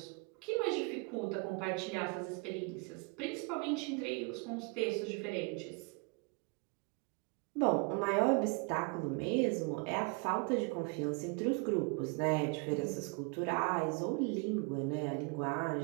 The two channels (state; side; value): quieter; left; 32.2 dB